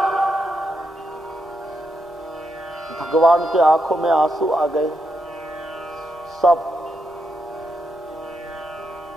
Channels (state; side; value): normal; both; correlation 0.82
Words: भगवान के आंखों में आंसू आ गए, सब।